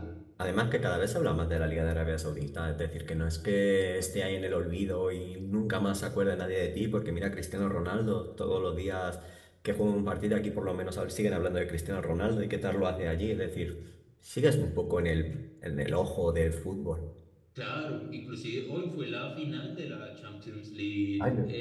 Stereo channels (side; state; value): both; identical; correlation 1.00